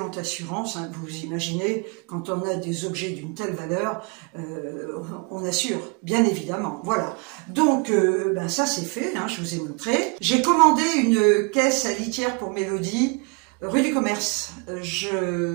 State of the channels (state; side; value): quieter; left; 32.4 dB